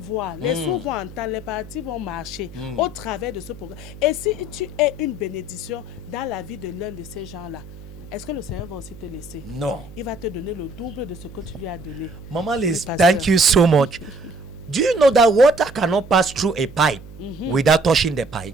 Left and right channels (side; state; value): right; noise; hum, 16 dB below the sound